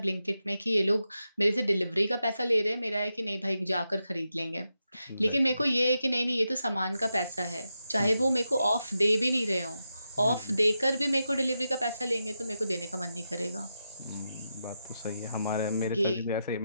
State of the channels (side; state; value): both; inverted; correlation -0.88